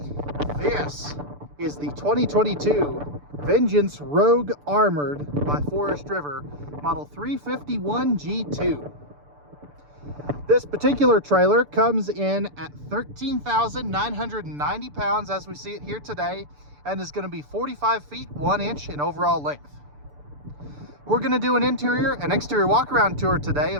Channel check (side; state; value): left; late; 6.9 ms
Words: This is the 2022 Vengeance Rogue Armored by Forest River Model 351 G2. This particular trailer comes in at 13,990 pounds as we see it here today, and is going to be 45 feet 1 inch in overall length. We're going to do an interior and exterior walk-around tour today